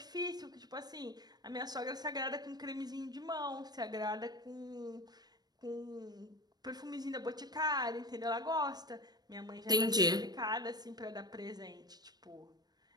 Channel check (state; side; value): late; left; 0.19 ms